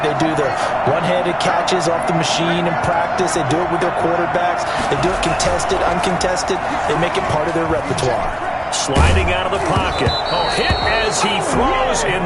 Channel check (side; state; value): both; identical; correlation 1.00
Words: They do the one-handed catches off the machine in practice. They do it with their quarterbacks. They do it contested, uncontested. They make it part of their repertoire. Sliding out of the pocket. Oh, hit as he throws,